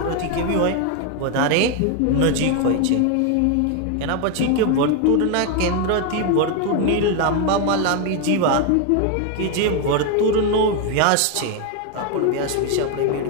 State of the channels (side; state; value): both; different; correlation 0.01